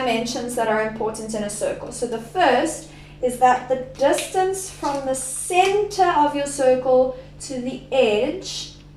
that are important in a circle. So the first is that the distance from the center of your circle to the edge,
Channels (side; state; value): both; identical; correlation 1.00